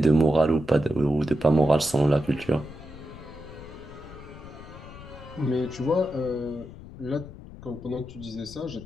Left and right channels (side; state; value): left; noise; rumble, 15 dB below the sound